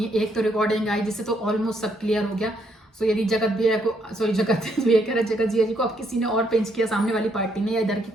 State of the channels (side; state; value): both; normal; correlation 0.73